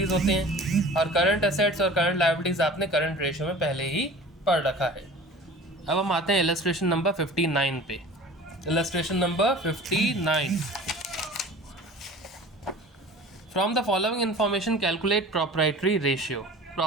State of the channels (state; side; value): normal; both; correlation 0.41